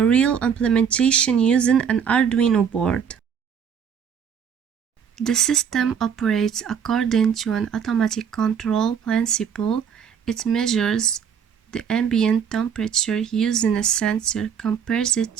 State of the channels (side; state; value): left; quieter; 7.5 dB